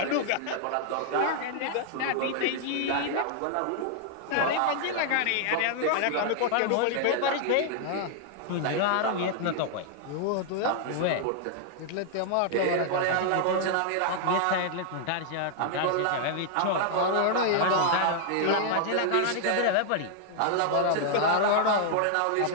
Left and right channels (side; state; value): both; different; correlation -0.01